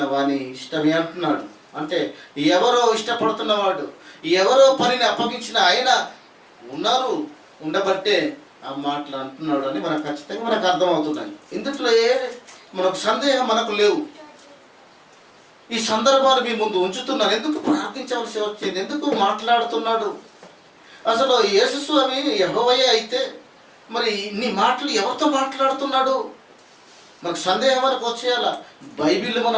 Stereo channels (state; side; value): identical; both; correlation 1.00